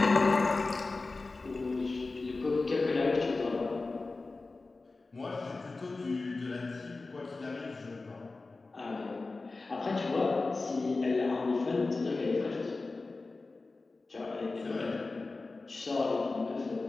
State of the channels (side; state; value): right; quieter; 3.6 dB